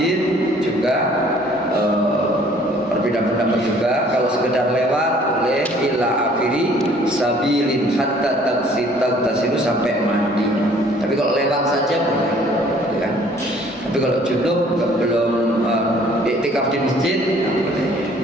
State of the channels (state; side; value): normal; both; correlation 0.57